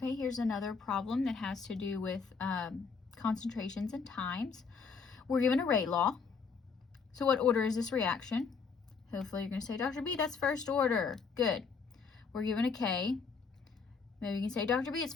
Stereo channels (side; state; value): right; quieter; 5.4 dB